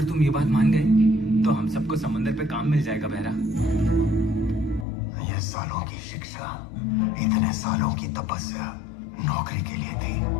तुम ये बात मान गए तो हम सबको समंदर पे काम मिल जाएगा भैरा। ये सालों की शिक्षा, इतने सालों की तपस्या नौकरी के लिए थी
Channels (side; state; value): right; drops out; at 4.9 s